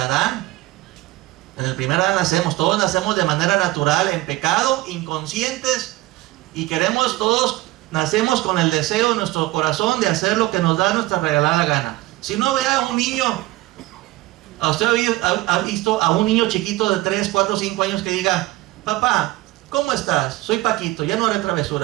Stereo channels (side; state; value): left; quieter; 18.4 dB